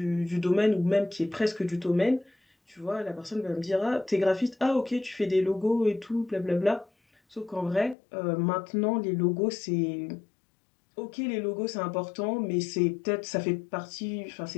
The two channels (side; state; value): right; drops out; at 8.0 s